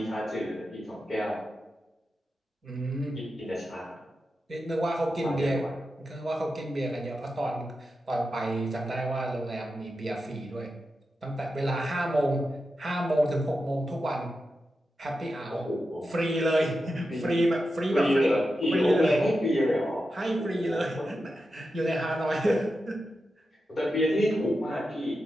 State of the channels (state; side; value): normal; both; correlation 0.90